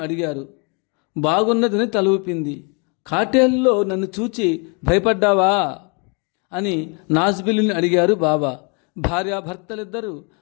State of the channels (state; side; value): quieter; right; 34.3 dB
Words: అడిగారు. బాగున్నదని తల ఊపింది. కాటేల్లో నన్ను చూచి భయపడ్డావా అని నాజ్బిల్లిని అడిగారు బాబా. భార్యాభర్తలిద్దరూ